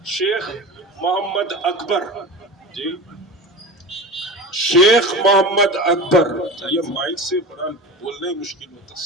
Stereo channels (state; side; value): normal; both; correlation 0.31